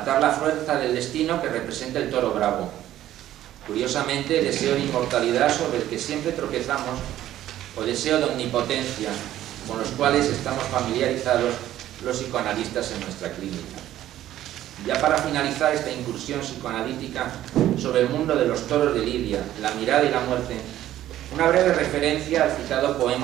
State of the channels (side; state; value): left; quieter; 13.0 dB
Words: la fuerza del destino que representa el toro bravo. Curiosamente, deseo de inmortalidad sobre el que siempre tropezamos, o deseo de omnipotencia, con los cuales estamos familiarizados los psicoanalistas en nuestra clínica. Ya para finalizar esta incursión psicoanalítica sobre el mundo de los toros de Lidia, la mirada y la muerte, una breve referencia al citado